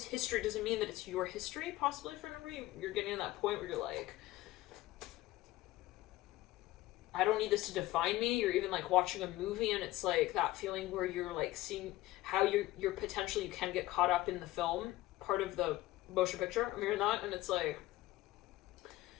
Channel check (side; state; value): right; quieter; 17.0 dB